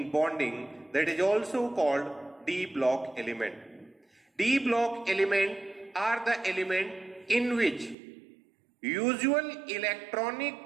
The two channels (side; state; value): left; drops out; at 8.0 s